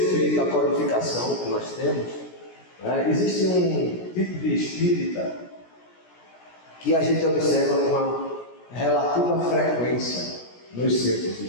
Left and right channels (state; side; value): late; right; 17 ms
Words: à qualificação que nós temos, existe um tipo de espírita que a gente observa com uma relativa frequência nos centros